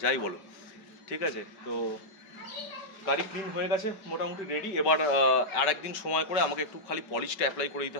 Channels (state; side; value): late; right; 5.2 ms